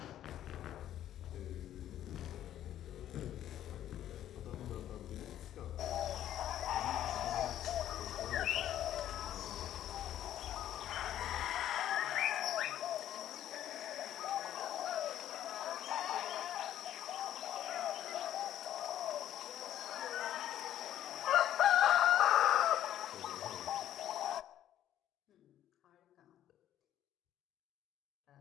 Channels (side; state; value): right; quieter; 11.7 dB